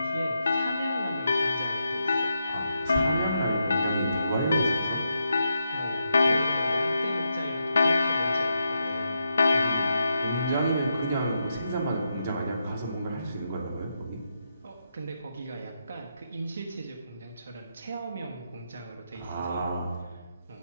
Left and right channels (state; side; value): inverted; both; correlation -0.83